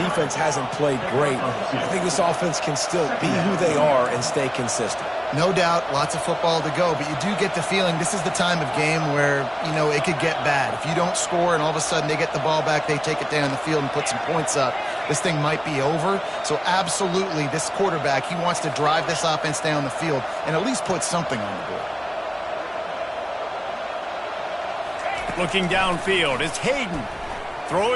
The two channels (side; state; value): both; identical; correlation 1.00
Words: hasn't played great. I think this offense can still be who they are and stay consistent. No doubt, lots of football to go, but you do get the feeling this is the time of game where, you know, it could get bad. If you don't score and all of a sudden they get the ball back, they take it down the field and put some points up, this thing might be over. So absolutely, this quarterback, he wants to drive this offense down the field and at least put something on the board. Looking downfield, it's Hayden.